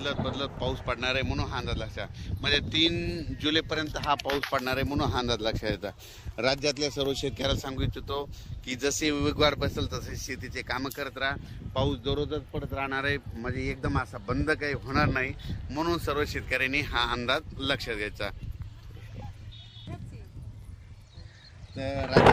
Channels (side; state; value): both; identical; correlation 1.00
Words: पाऊस पडणार आहे, म्हणून हा अंदाज लक्षात म्हणजे 3 जुलैपर्यंत हा पाऊस पडणार आहे, म्हणून हा अंदाज लक्षात येतात। राज्यातल्या सर्व शेतकऱ्याला सांगू इच्छितो की जसे वेगवार बसेल तसे शेतीचे कामं करत राहा। पाऊस दररोजच पडत राहणार आहे, म्हणजे एकदम असा बंद काही होणार नाही, म्हणून सर्व शेतकऱ्यांनी हा अंदाज लक्षात घ्यायचा। तर